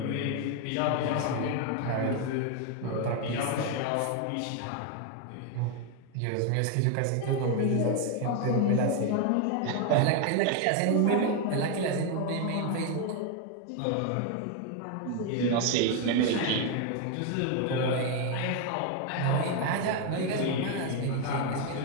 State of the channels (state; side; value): different; both; correlation 0.01